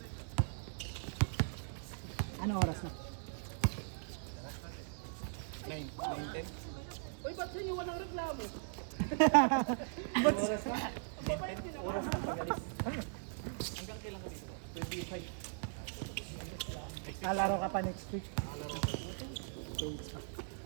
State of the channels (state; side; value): silent; left; digital silence